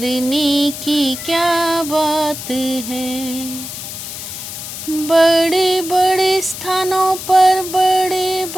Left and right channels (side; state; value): left; noise; hiss, 9 dB below the sound